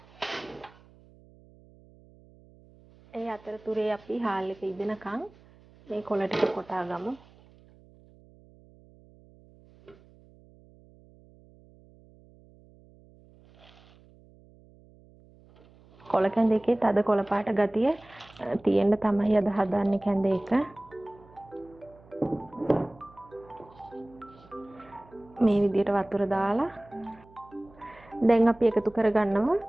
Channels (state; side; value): noise; right; hum, 26 dB below the sound